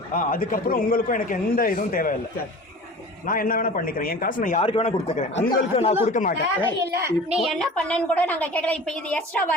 அதுக்கப்புறம் உங்களுக்கும் எனக்கு எந்த இதுவும் தேவையில்லை. சரி நான் என்ன வேணா பண்ணிக்கிறேன். என் காசு நான் யாருக்கு வேணா கொடுத்துக்கிறேன், உங்களுக்கு நான் கொடுக்க மாட்டேன். நீ என்ன பண்ணன்னு கூட நாங்க கேட்கல. இப்ப இது எக்ஸ்ட்ரா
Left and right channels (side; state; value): both; normal; correlation 0.39